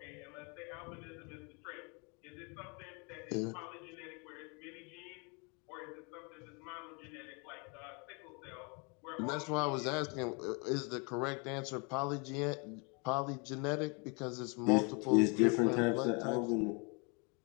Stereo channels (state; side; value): quieter; right; 32.7 dB